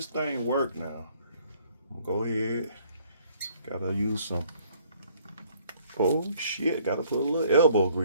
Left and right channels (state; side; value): inverted; both; correlation -0.61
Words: thing work now. I'm gonna go ahead. Gotta use some. Oh shit! Gotta put a little elbow